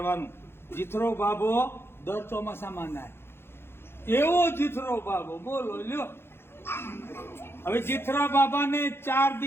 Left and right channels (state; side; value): late; right; 0.11 ms